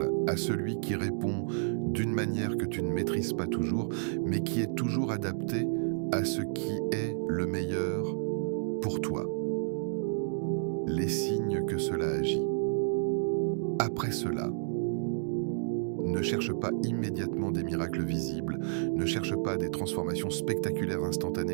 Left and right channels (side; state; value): left; silent; digital silence